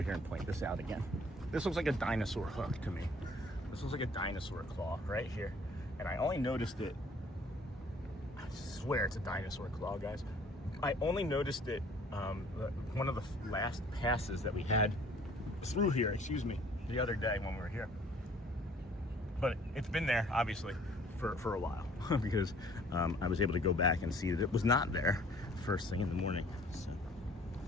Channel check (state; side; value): normal; both; correlation 0.56